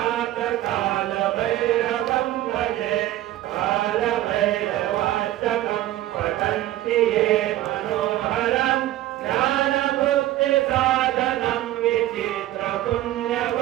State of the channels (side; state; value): left; quieter; 14.6 dB